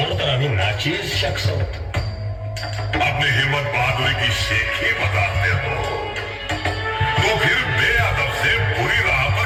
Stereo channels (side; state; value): both; identical; correlation 1.00